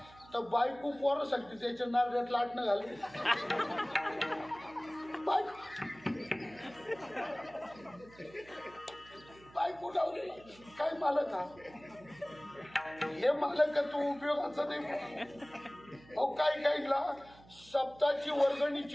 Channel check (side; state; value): right; noise; hum, 23 dB below the sound